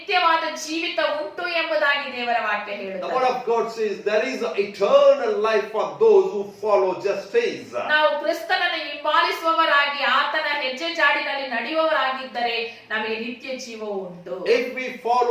ಜೀವಿತ ಉಂಟು ಎಂಬುದಾಗಿ ದೇವರ ವಾಕ್ಯ The ಹೇಳುತ್ತದೆ. word of God says, there is an eternal life for those who follow justice. ನಾವು ಕ್ರಿಸ್ತನನ್ನು ಹಿಂಬಾಲಿಸುವವರಾಗಿ ಆತನ ಹೆಜ್ಜೆ ಜಾಡಿನಲ್ಲಿ ನಡೆಯುವವರಾಗಿದ್ದರೆ ನಮಗೆ ನಿತ್ಯ ಜೀವ ಉಂಟು. If we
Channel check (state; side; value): identical; both; correlation 1.00